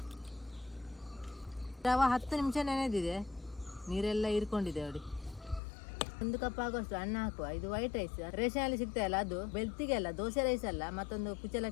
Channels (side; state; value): right; drops out; at 5.6 s